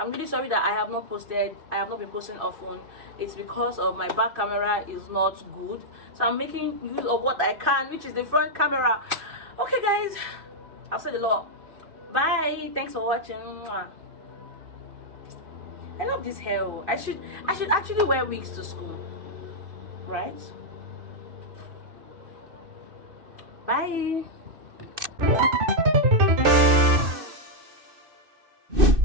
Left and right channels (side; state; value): left; late; 2.6 ms